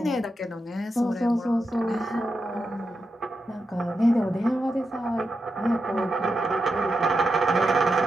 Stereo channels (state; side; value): normal; both; correlation 0.87